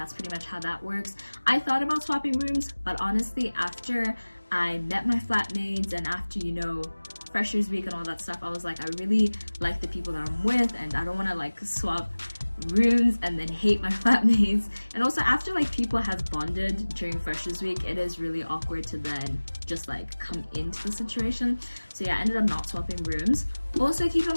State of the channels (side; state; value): both; inverted; correlation -1.00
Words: pretty much how that works. I thought about swapping rooms, but honestly after I met my flatmates and after, you know, Freshers Week and all that stuff, I was like, I really like the people that I'm with, and I don't want to like swap rooms and then hate my flatmates. And also after like people have bonded during Freshers Week, it is really awkward to then just like come into the situation. So yeah, I ended up not swapping rooms. Also keep in